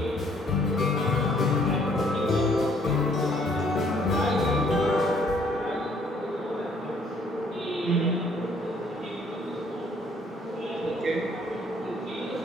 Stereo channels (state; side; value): normal; both; correlation 0.63